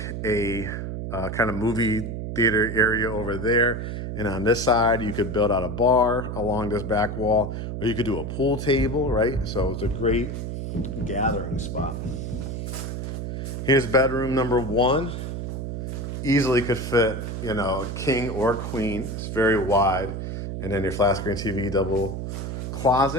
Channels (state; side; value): noise; right; hum, 5 dB below the sound